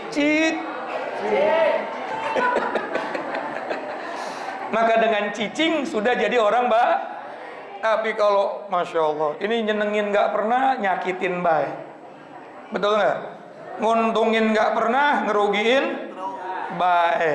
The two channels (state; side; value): identical; both; correlation 1.00